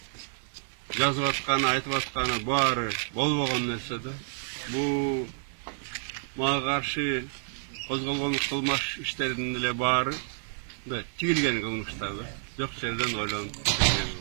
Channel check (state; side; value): silent; left; digital silence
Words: жазып атканы, айтып атканы баары болбогон нерсе да. Бул мага каршы козголгон кылмыш иштердин эле баары мындай тигилген кылмыштар да. Жок жерден ойлонуп тигилген